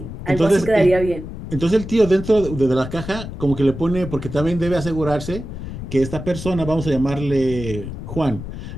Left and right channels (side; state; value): left; noise; rumble, 9 dB below the sound